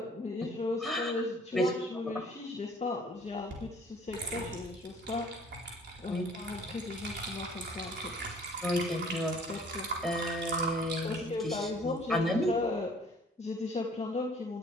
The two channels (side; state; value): both; normal; correlation 0.55